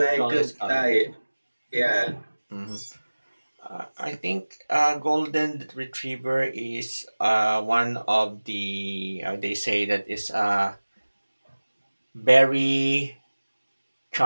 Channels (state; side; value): inverted; both; correlation -1.00